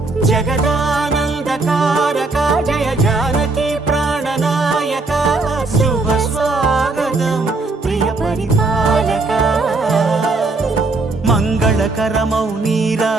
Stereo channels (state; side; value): quieter; left; 3.5 dB